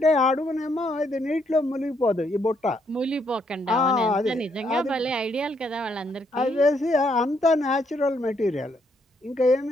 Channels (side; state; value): both; normal; correlation 0.73